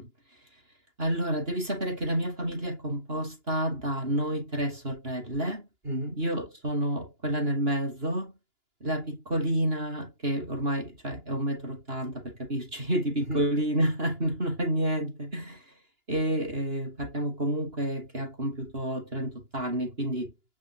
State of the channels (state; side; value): late; left; 2.9 ms